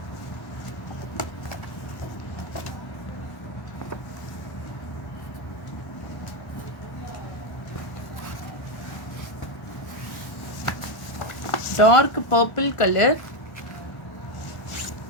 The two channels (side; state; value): right; late; 1.1 ms